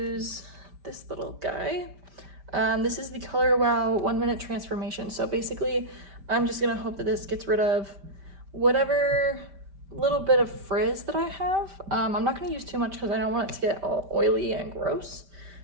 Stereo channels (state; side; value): late; left; 5.1 ms